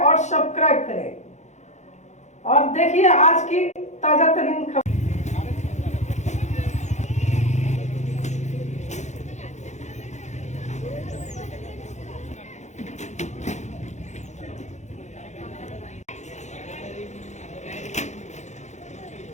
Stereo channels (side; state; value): right; late; 0.34 ms